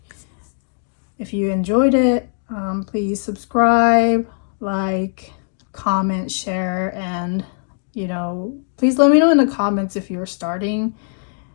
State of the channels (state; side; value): silent; right; digital silence